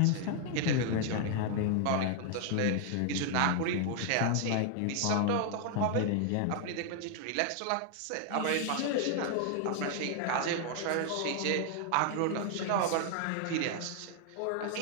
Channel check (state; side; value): different; both; correlation 0.00